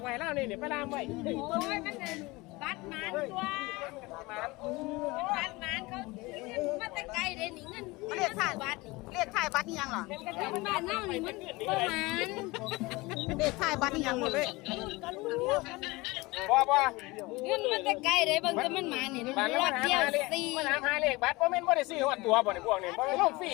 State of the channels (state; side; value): quieter; right; 22.6 dB